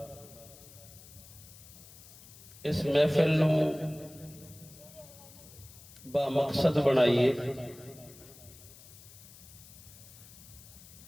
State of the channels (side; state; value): left; noise; hiss, 19 dB below the sound